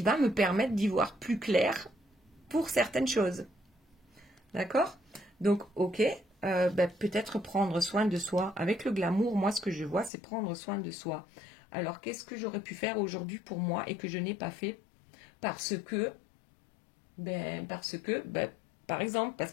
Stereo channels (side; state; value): right; drops out; at 10.1 s